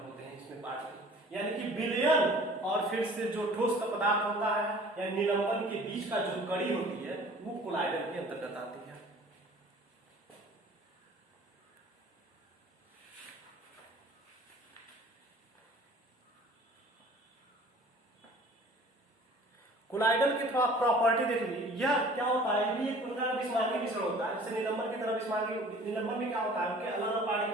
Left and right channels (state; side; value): normal; both; correlation 0.48